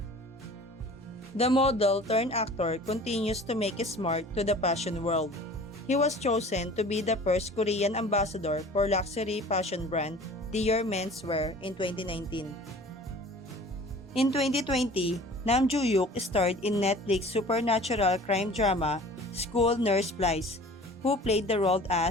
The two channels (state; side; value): normal; both; correlation 0.45